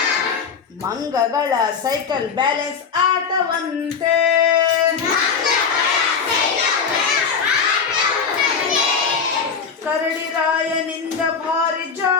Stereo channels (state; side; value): quieter; right; 6.0 dB